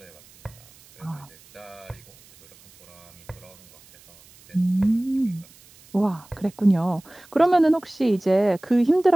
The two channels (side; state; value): right; noise; hiss, 26 dB below the sound